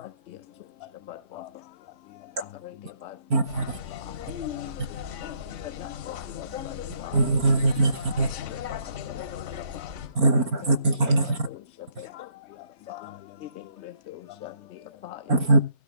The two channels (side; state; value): left; late; 4.4 ms